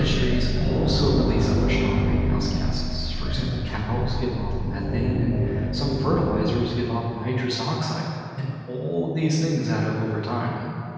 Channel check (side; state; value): both; identical; correlation 1.00